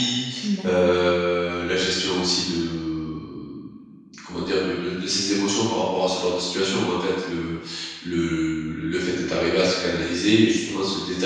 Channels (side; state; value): both; identical; correlation 1.00